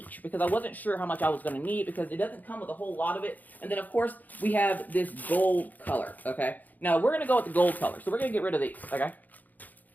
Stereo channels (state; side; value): late; right; 0.082 ms